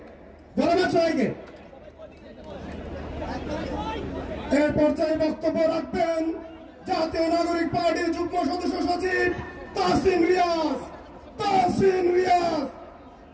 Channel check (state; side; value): identical; both; correlation 1.00